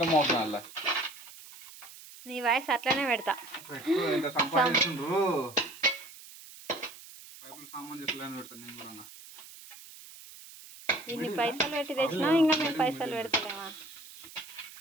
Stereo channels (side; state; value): right; noise; hiss, 17 dB below the sound